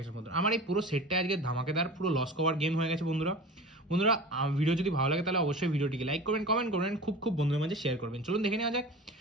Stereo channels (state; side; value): normal; both; correlation 0.35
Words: গেছে বন্ধুরা। আমার এই পুরো সেটটা আজকে ধামাকেদার পুরো লস কভার গেম হয়ে গেছে বন্ধুরা। ভিডিও যদি ভালো লাগে তাহলে অবশ্যই ভিডিওটিকে লাইক করবেন, কমেন্ট করবেন, খুব বন্ধুদের মাঝে শেয়ার করবেন। চলুন দেখে নেওয়া যাক